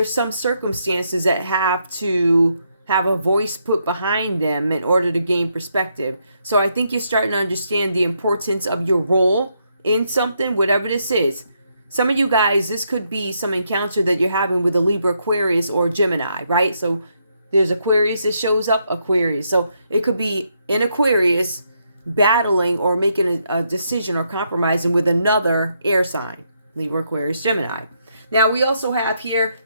some circumstances that have to have a voice put behind them in order to gain perspective. So I think you're starting to understand the importance of your role in something, whatever this is. Some of you guys, this could be some encounter that you're having with a Libra, Aquarius, or Gemini, right? So there's Aquarius that shows up, Aquarius. So it could be in Aquarius battling or making a decision or compromising with another air sign, Libra, Aquarius, Gemini. Now we also have here,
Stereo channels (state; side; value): inverted; both; correlation -0.77